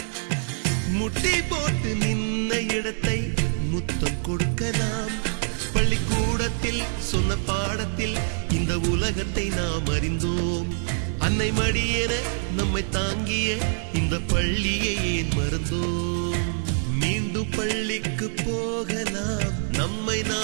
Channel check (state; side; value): silent; left; 60 dB below the other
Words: முட்டி போட்டு நின்ன இடத்தை முத்தம் கொடுக்கலாம். பள்ளிக்கூடத்தில் சொன்ன பாடத்தில் இந்த உலகத்தை நாம் அறிந்தோம். அன்னை மடியென நம்மை தாங்கிய இந்த பள்ளியை ஏன் மறந்தோம்? மீண்டும் பள்ளிக்கு போகலாம், நம்மை